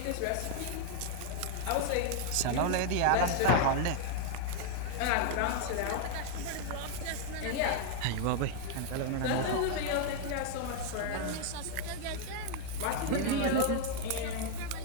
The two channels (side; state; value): both; different; correlation 0.00